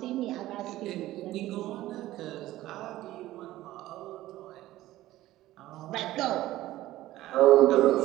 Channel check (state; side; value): quieter; left; 15.7 dB